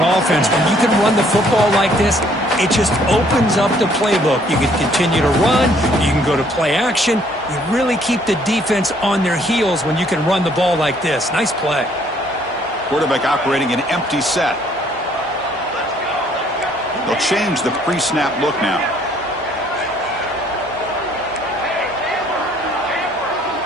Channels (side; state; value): both; normal; correlation 0.63